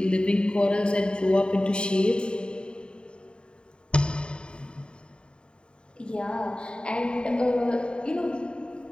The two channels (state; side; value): late; right; 0.051 ms